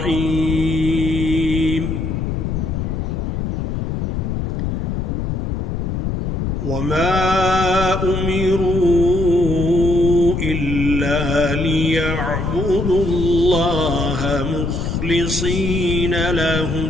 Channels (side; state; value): left; noise; rumble, 1 dB below the sound